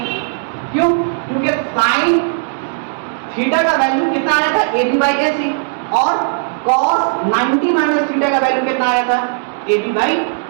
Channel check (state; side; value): silent; left; digital silence